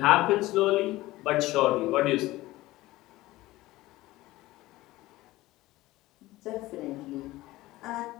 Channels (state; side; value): quieter; right; 17.9 dB